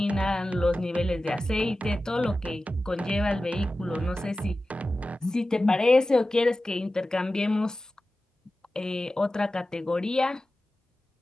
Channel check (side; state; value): both; normal; correlation 0.95